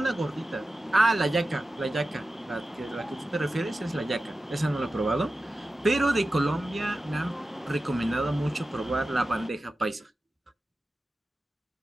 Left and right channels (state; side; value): normal; both; correlation 0.93